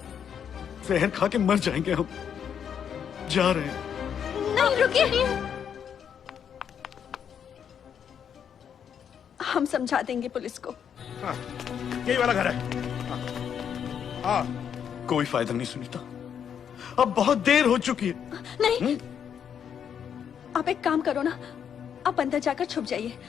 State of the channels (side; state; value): right; quieter; 8.2 dB